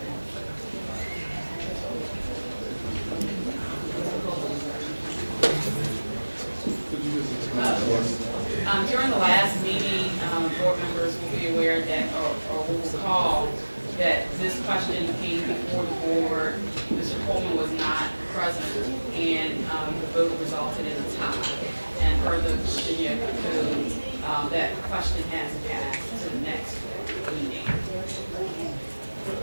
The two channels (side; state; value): both; inverted; correlation -1.00